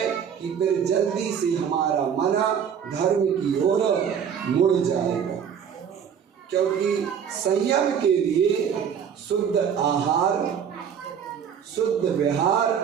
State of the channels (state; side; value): quieter; left; 7.8 dB